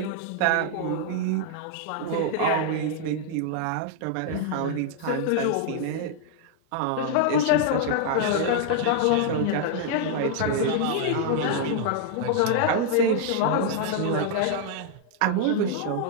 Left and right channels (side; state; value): both; different; correlation -0.01